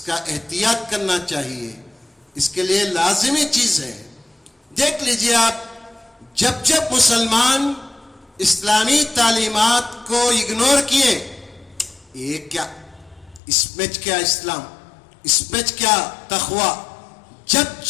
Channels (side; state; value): right; drops out; at 13.4 s